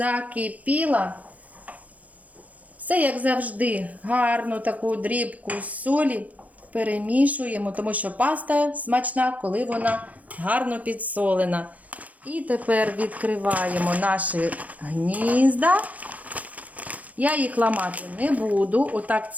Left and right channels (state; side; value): late; left; 0.074 ms